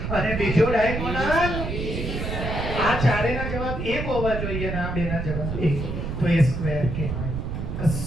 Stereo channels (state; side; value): noise; right; rumble, 4 dB below the sound